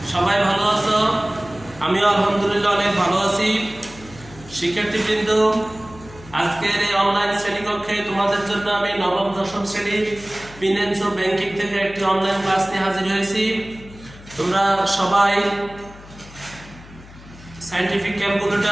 সবাই ভালো আছো। আমিও আলহামদুলিল্লাহ অনেক ভালো আছি। শিক্ষার্থীবৃন্দ, আজকের এই অনলাইন শ্রেণীকক্ষে তোমাদের জন্য আমি নবম দশম শ্রেণীর ফিন্যান্স ও ব্যাংকিং থেকে একটি অনলাইন ক্লাস নিয়ে হাজির হয়েছি। তোমরা সবাই সায়েন্টিফিক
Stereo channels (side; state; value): left; noise; hum, 19 dB below the sound